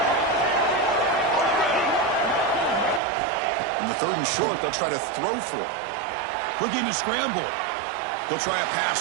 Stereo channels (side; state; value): left; drops out; at 3.0 s